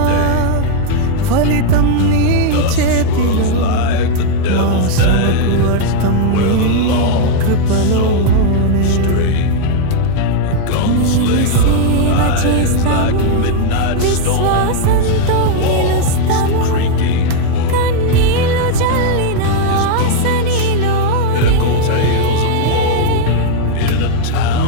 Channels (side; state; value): both; different; correlation 0.00